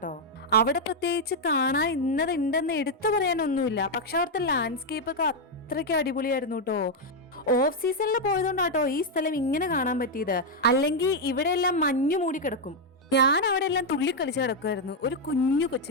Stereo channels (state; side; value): normal; both; correlation 0.01